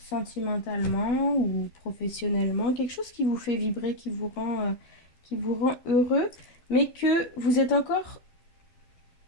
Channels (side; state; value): right; late; 12 ms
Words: ou professionnellement, quelque chose qui vous fait vibrer, qui vous rend heureux, mais que vous êtes encore,